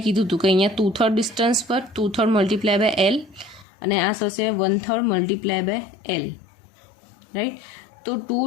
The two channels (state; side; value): drops out; right; at 3.7 s